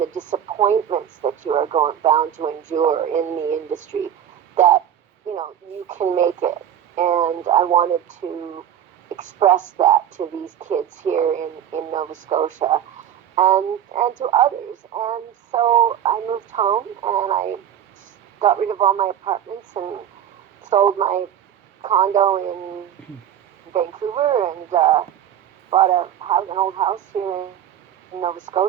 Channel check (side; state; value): left; quieter; 10.0 dB